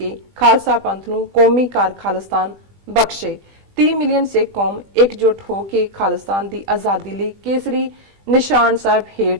ਖਾਲਸਾ ਪੰਥ ਨੂੰ ਕੌਮੀ ਕਾਰ ਖਾਲਿਸਤਾਨ ਬਖਸ਼ੇ। 30 ਮਿਲੀਅਨ ਸਿੱਖ ਕੌਮ ਇਕਜੁੱਟ ਹੋ ਕੇ ਖਾਲਿਸਤਾਨ ਦੀ ਆਜ਼ਾਦੀ ਲਈ ਕੇਸਰੀ ਨਿਸ਼ਾਨ ਸਾਹਿਬ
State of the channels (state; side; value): late; left; 18 ms